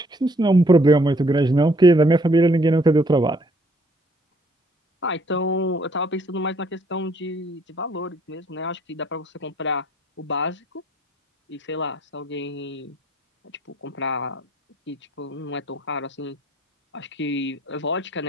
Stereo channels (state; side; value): normal; both; correlation 0.64